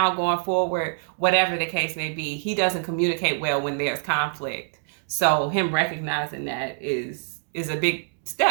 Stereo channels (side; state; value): left; silent; digital silence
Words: going forward, whatever the case may be. He doesn't communicate well when there's conflict. So him recognizing that is a big